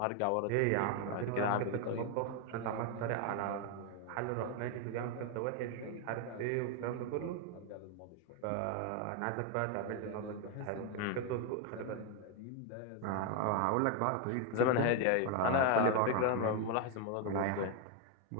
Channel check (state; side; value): different; both; correlation 0.01